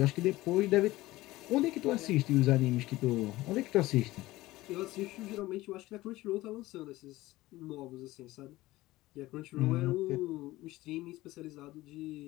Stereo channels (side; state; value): right; quieter; 18.1 dB